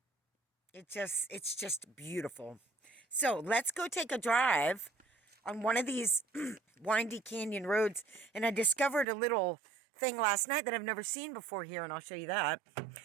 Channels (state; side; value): drops out; left; at 9.1 s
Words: It's just beautiful. So let's go take a drive on one of these windy canyon roads. And I discovered a little thing last night that I've never seen before here, and I'll show you that.